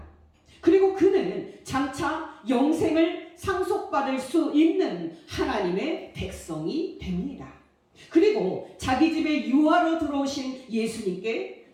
그리고 그는 장차 영생을 상속받을 수 있는 하나님의 백성이 됩니다. 그리고 자기 집에 유아로 들어오신 예수님께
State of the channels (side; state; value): both; identical; correlation 1.00